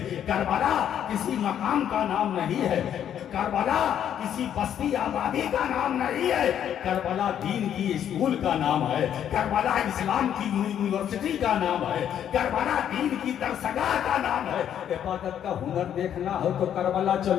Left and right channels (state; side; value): quieter; right; 9.7 dB